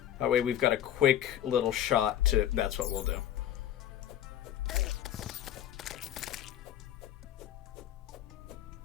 That way we've got a quick little shot to... That's what we'll do.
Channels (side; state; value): right; quieter; 11.5 dB